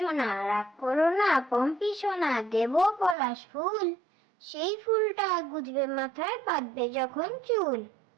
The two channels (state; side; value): drops out; left; at 3.2 s